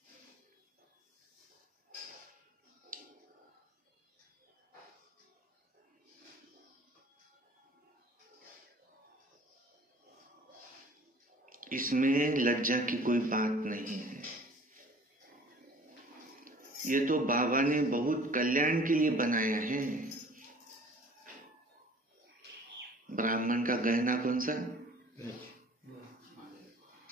इसमें लज्जा की कोई बात नहीं है। ये तो बाबा ने बहुत कल्याण के लिए बनाया है। ब्राह्मण का गहना कौन सा?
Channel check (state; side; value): normal; both; correlation 0.49